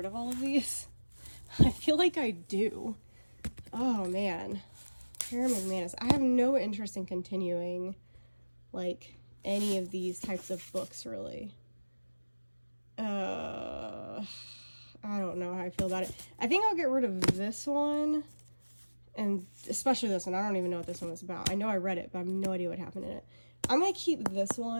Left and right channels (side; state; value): both; inverted; correlation -1.00